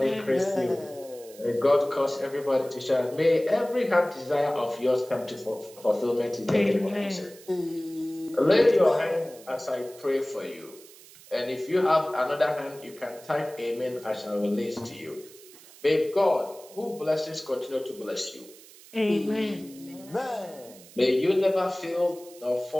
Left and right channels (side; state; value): right; noise; hiss, 21 dB below the sound